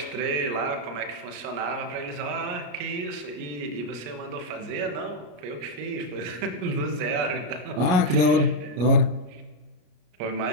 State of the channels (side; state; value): left; late; 33 ms